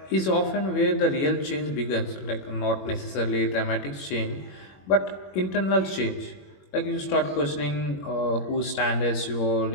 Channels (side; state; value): right; late; 21 ms